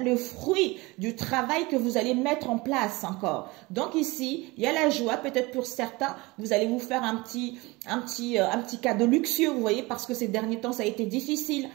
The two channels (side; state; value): left; quieter; 23.2 dB